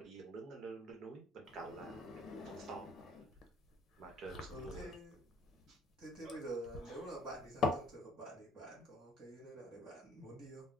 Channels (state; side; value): normal; both; correlation 0.59